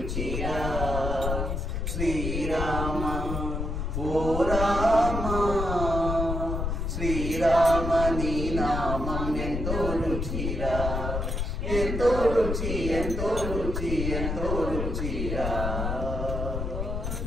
శ్రీరామ ఓ రామ శ్రీరామ నీ నామం ఎంతో రుచిరా ఎంతో రుచి ఎంతో రుచి ఎంతో రుచిరా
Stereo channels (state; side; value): noise; left; rumble, 2 dB below the sound